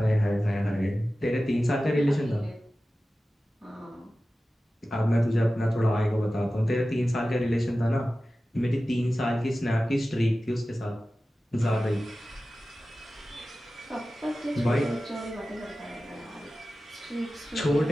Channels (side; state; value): both; normal; correlation 0.95